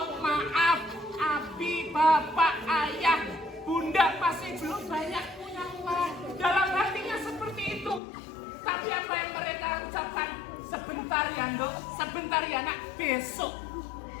maaf, abi, bapak, ayah, bunda masih belum banyak punya uang. Dalam hatinya seperti itu. Tapi apa yang mereka ucapkan? Sebentar ya Dok, sebentar ya nak, besok.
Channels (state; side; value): drops out; right; at 8.0 s